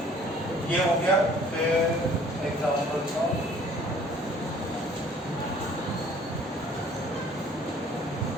ये हो गया, फिर एग्जांपल्स ऑफ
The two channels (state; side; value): normal; both; correlation 0.54